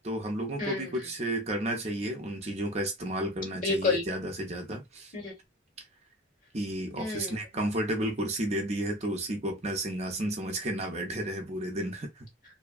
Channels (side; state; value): both; normal; correlation 0.37